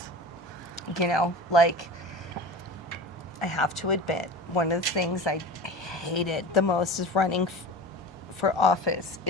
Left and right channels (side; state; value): both; normal; correlation 0.33